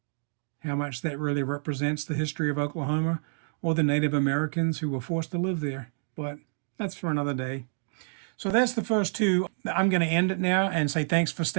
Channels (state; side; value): silent; left; digital silence